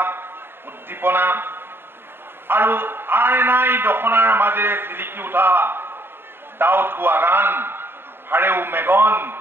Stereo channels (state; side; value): late; left; 0.11 ms